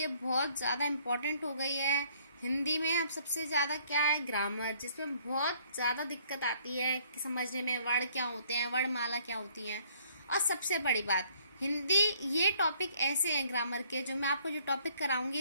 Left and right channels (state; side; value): inverted; both; correlation -0.62